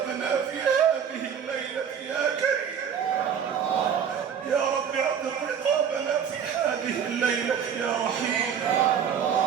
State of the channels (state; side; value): quieter; left; 7.8 dB